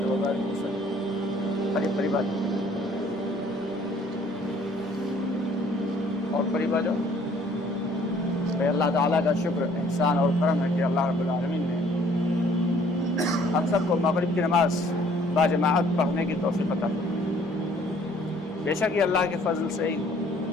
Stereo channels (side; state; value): both; normal; correlation 0.58